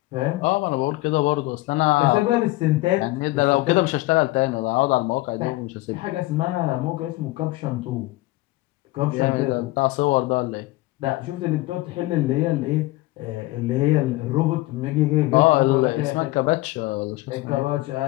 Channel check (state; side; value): quieter; right; 19.7 dB